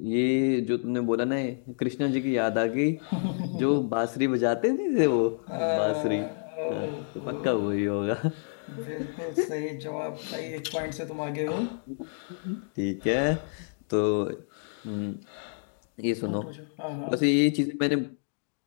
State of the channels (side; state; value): right; silent; digital silence